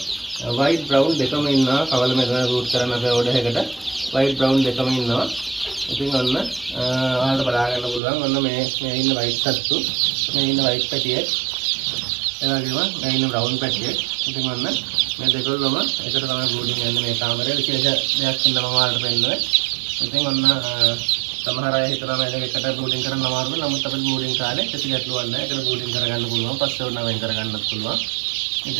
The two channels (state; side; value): drops out; left; at 8.0 s